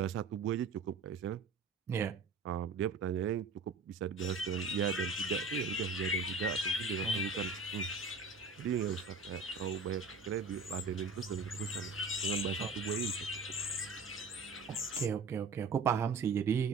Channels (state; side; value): quieter; left; 4.1 dB